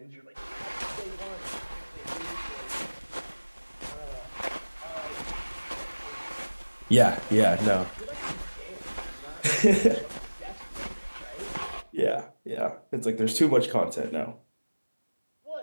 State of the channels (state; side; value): inverted; both; correlation -1.00